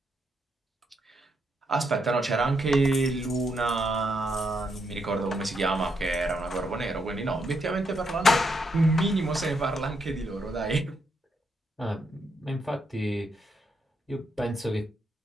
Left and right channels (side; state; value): both; normal; correlation 0.79